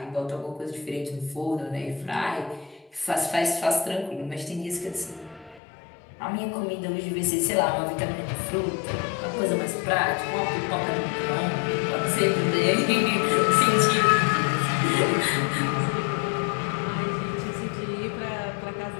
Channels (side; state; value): right; drops out; at 5.6 s